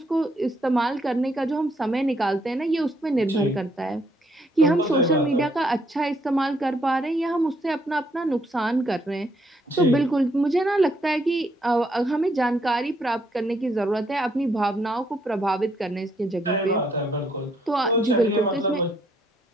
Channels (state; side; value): normal; both; correlation 0.71